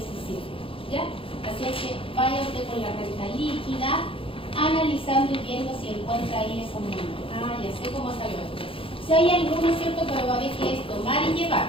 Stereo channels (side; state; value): right; late; 0.26 ms